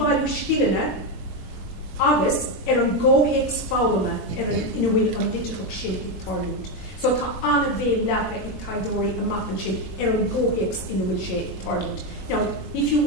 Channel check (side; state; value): both; normal; correlation 0.09